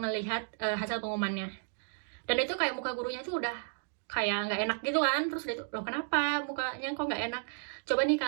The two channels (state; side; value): silent; left; 56 dB below the other